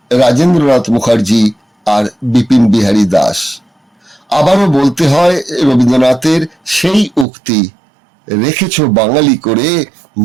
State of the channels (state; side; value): drops out; left; at 7.2 s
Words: রাজেন্দ্রনাথ মুখার্জি আর বিপিন বিহারী দাস। আবারও বলতে হয় রবীন্দ্রনাথের সেই উক্তি, রেখেছ বাঙালি করে